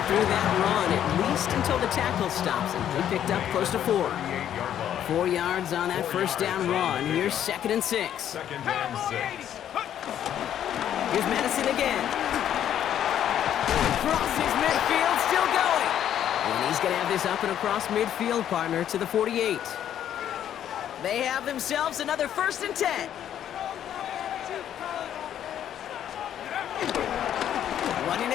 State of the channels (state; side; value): quieter; right; 10.4 dB